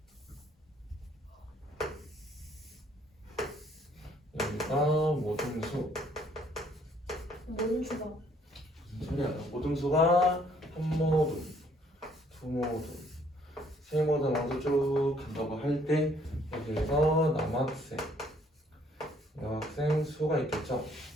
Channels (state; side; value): normal; both; correlation 0.64